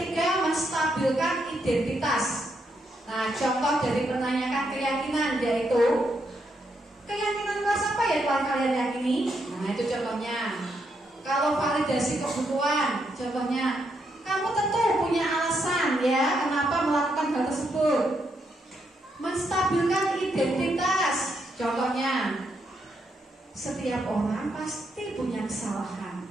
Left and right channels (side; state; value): both; normal; correlation 0.79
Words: menstabilkan identitas. Nah, contoh dari menanyakan keyakinan yaitu keyakinan kelas apa ya telah kalian yakini? Nah, itu contohnya. Kalau validasi kebutuhan, contohnya kamu tentu punya alasan ya kenapa melakukan hal tersebut. Menstabilkan identitas, contohnya setiap orang pasti punya kesalahan.